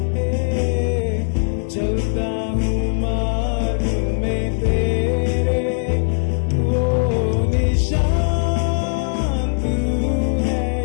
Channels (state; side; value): silent; right; digital silence